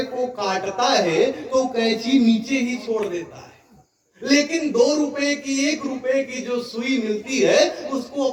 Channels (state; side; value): identical; both; correlation 1.00